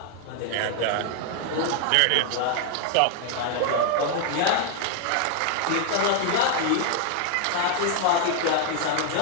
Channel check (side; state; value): both; different; correlation 0.00